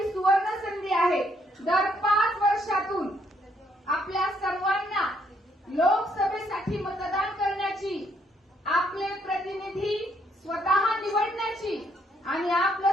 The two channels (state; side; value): normal; both; correlation 0.71